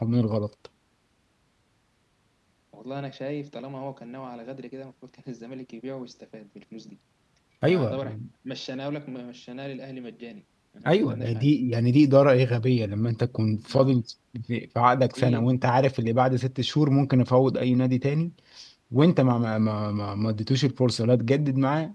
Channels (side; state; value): both; identical; correlation 1.00